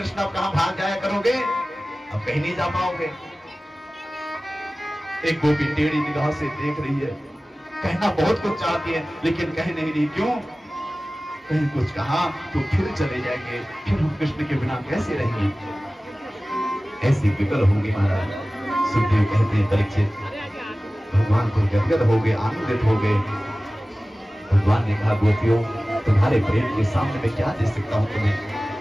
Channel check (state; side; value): normal; both; correlation 0.97